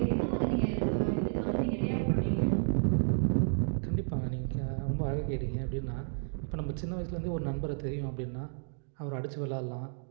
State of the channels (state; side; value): silent; left; digital silence